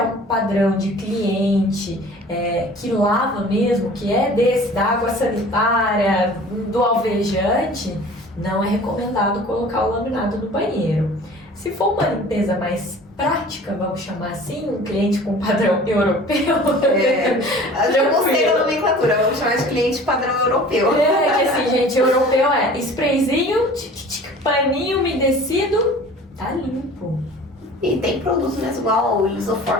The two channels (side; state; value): both; normal; correlation 0.45